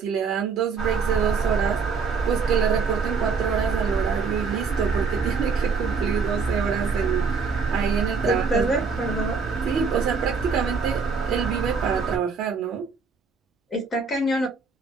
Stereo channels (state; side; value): quieter; left; 5.1 dB